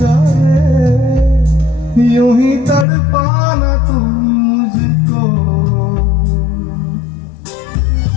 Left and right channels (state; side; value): drops out; right; at 2.9 s